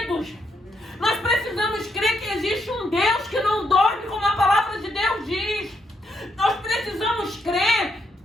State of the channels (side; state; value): both; normal; correlation 0.78